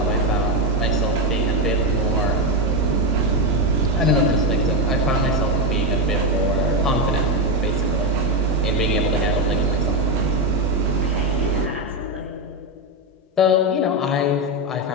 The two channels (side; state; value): both; normal; correlation 0.10